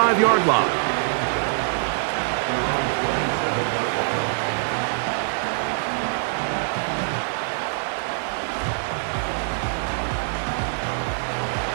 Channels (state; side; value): silent; left; digital silence